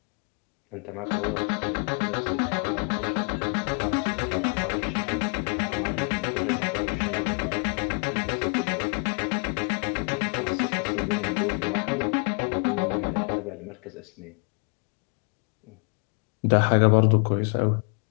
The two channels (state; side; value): quieter; right; 37.0 dB